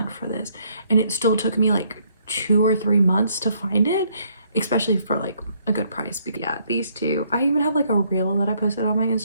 for this, and it still took me like 2 or 3 months to find it, especially for like a good price. But yeah, these 2, I even have like a reel that I posted on my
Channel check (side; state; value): both; inverted; correlation -0.68